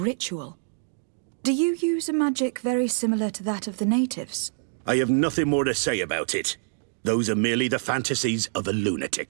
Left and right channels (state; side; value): silent; left; digital silence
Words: Do you use a magic very similar to that of the natives? I have nothing more to say about it. Those are merely the fantasies of a